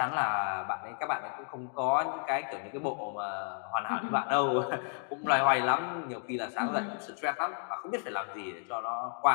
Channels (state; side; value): silent; right; 56 dB below the other